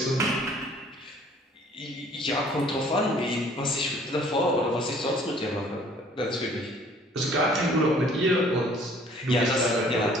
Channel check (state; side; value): normal; both; correlation 0.56